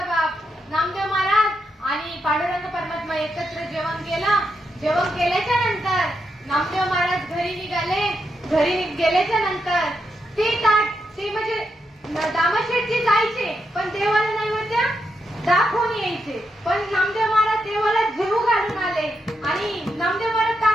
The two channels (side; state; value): both; normal; correlation 0.83